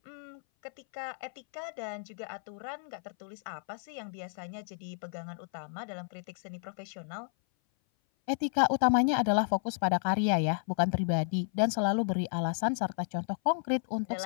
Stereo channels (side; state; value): right; silent; 56 dB below the other